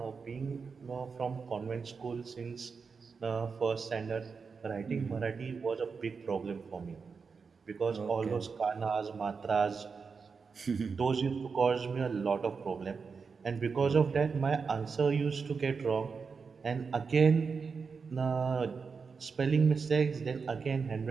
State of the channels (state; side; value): quieter; left; 5.3 dB